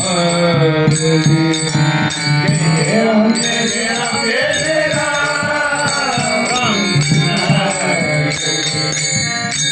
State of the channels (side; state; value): both; identical; correlation 1.00